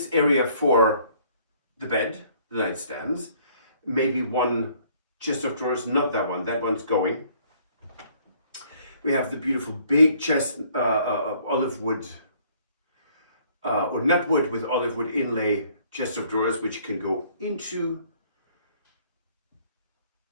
area for the bed, the nightstands, maybe one chest of drawers, not that one, that one's going. We have the beautiful big chest, olive wood, or nut wood with olive wood inlay chest of drawers, which can go into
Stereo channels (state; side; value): inverted; both; correlation -0.61